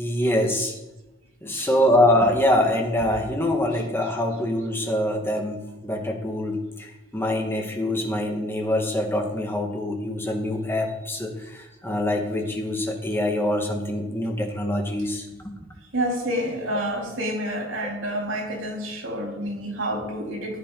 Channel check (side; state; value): both; normal; correlation 0.54